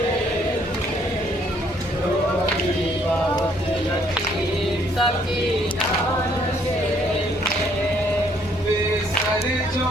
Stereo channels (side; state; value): both; normal; correlation 0.66